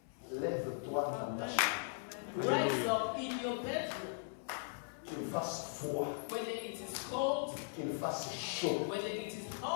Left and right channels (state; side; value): silent; right; 52 dB below the other